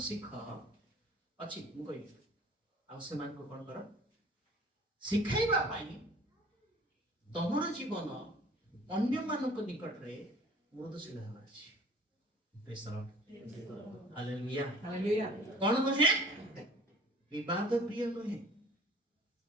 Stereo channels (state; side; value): normal; both; correlation 0.48